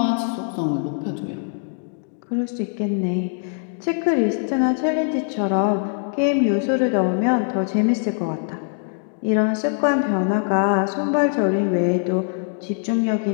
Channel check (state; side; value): silent; right; digital silence